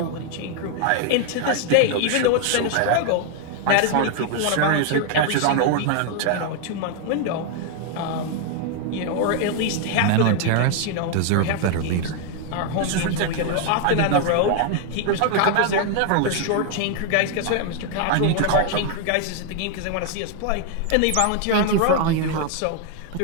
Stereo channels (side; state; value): both; different; correlation 0.00